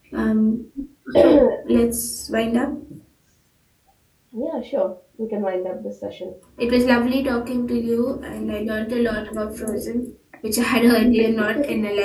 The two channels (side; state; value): both; identical; correlation 1.00